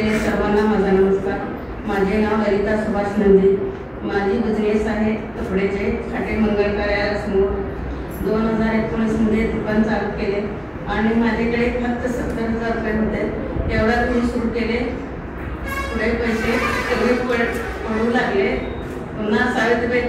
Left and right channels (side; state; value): both; identical; correlation 1.00